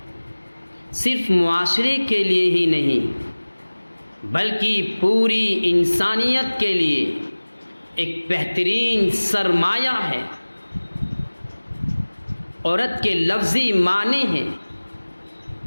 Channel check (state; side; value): inverted; both; correlation -1.00